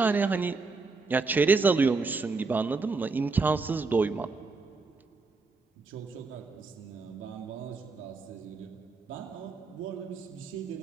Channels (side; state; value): left; quieter; 4.1 dB